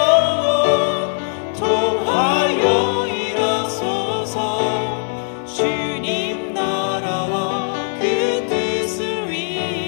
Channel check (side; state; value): right; silent; digital silence